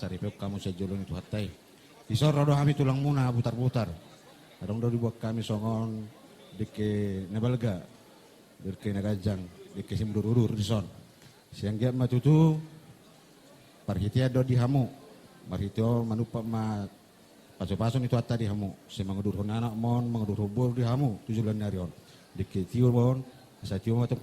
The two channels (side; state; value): both; identical; correlation 1.00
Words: pep kamu sejulun itu hatai. Isor rodo kami tulang muna butar-butar. Adong do dibuat kami songon deke nebalga. Deke negajang, deke simdur-udur di son. Siang dia matutu parhitia do di hamu. Marhitio manupa ma paso-paso itu hatta di hamu. Si mangudur anak mon, mangudur hubur di hamu 7 bulan narion. Deke tio mon, sa tio matong